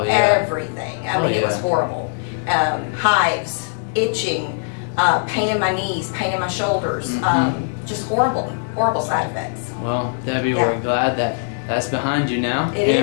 everything. I mean, it was horrible. Hives, itching, pain in my knees, pain in my shoulders. Just horrible, horrible side effects. Well, Debbie, we're glad that that's behind you now. It is.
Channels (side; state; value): right; silent; digital silence